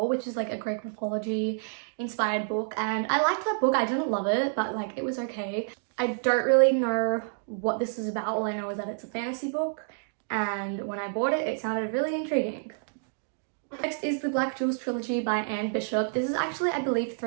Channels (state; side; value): silent; left; digital silence